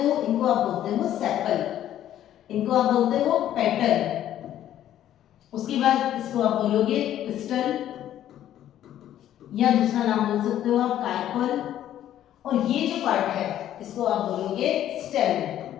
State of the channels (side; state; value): right; quieter; 11.7 dB